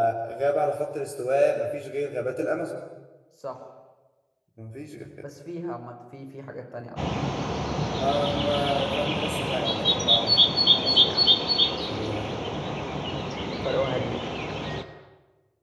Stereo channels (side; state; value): both; identical; correlation 1.00